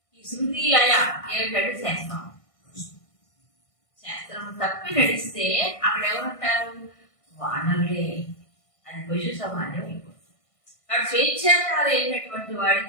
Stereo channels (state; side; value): late; right; 1.6 ms